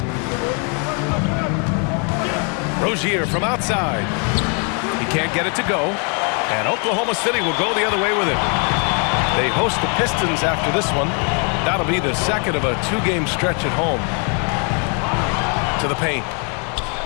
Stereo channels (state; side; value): quieter; right; 37.5 dB